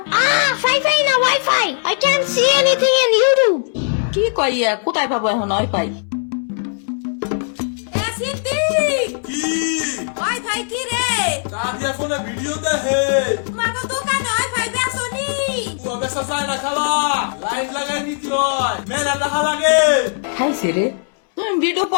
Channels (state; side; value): silent; right; 67 dB below the other